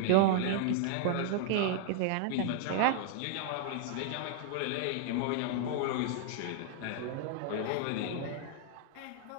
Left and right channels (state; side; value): different; both; correlation 0.00